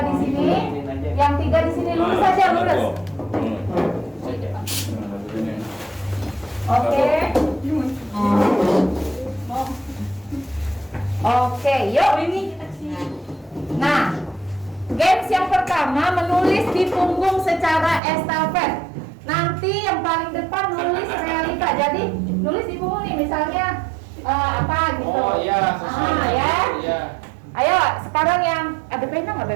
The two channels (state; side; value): drops out; left; at 18.0 s